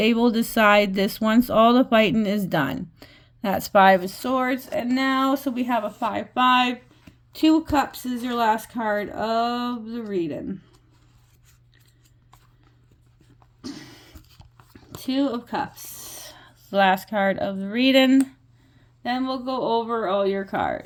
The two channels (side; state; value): both; identical; correlation 1.00